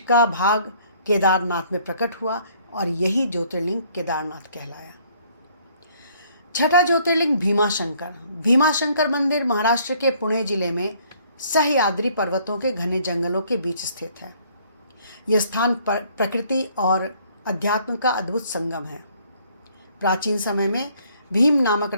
भाग केदारनाथ में प्रकट हुआ और यही ज्योतिर्लिंग केदारनाथ कहलाया। छठा ज्योतिर्लिंग भीमाशंकर। भीमाशंकर मंदिर महाराष्ट्र के पुणे जिले में सह्याद्री पर्वतों के घने जंगलों के बीच स्थित है। यह स्थान प्रकृति और अध्यात्म का अद्भुत संगम है। प्राचीन समय में भीम नामक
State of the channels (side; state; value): both; inverted; correlation -0.62